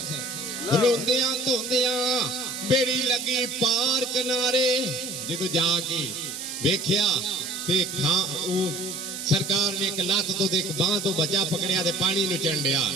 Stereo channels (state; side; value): noise; right; hiss, 8 dB below the sound